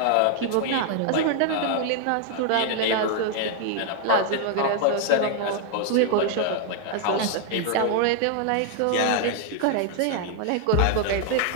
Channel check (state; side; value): different; both; correlation 0.00